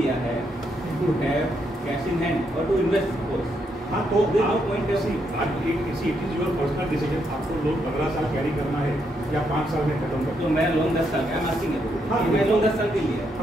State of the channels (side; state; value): both; normal; correlation 0.78